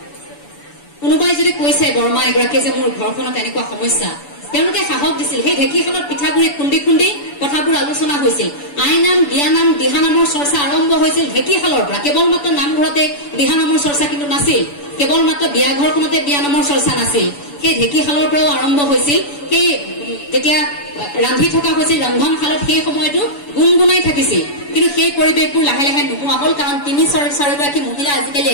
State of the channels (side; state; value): right; late; 7.0 ms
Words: কোনোবাই যদি কৈছে বৰমা এগৰাকীয়ে যে মোৰ ঘৰখনত এনেকুৱা সমস্যা, তেওঁলোকে সাহস দিছিল। সেই ঢেঁকীশালত পিঠাগুৰি খুন্দি খুন্দি কথাবোৰ আলোচনা হৈছিল। আই নাম, বিয়া নাম, দিহা নামৰ চৰ্চা আৰম্ভ হৈছিল ঢেঁকীশালৰ পৰা। কেৱল মাত্ৰ নামঘৰতে দিহা নামৰ চৰ্চা কিন্তু নাছিল, কেৱল মাত্ৰ বিয়া ঘৰখনতে বিয়া নামৰ চৰ্চা নাছিল, সেই ঢেঁকীশালৰ পৰাও আৰম্ভ হৈছিল। সেই যেতিয়া ৰান্ধি থকা হৈছিল ৰন্ধনশালত, সেই সময়তো গুণগুণাই থাকিছিল, কিন্তু সেই পৰিৱেশবোৰ লাহে লাহে নোহোৱা হ'ল, কাৰণ 3-4 গৰাকী মহিলা আজিকালি